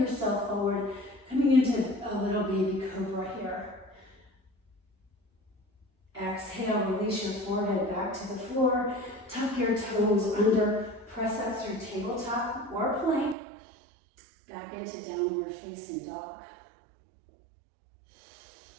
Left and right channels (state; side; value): drops out; left; at 13.4 s